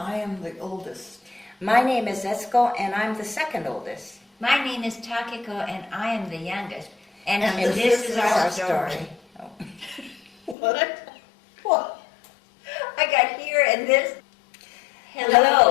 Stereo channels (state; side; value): drops out; right; at 10.6 s